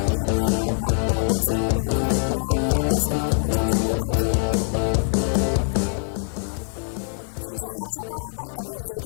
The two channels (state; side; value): silent; right; digital silence